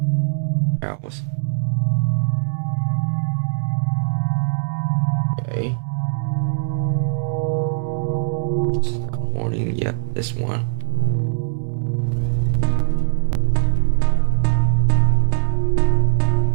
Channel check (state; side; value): silent; left; 65 dB below the other